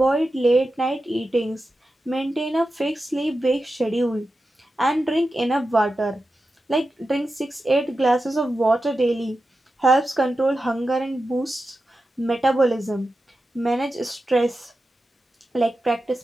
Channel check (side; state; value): both; normal; correlation 0.91